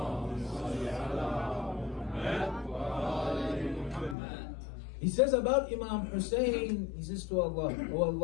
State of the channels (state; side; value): drops out; right; at 4.2 s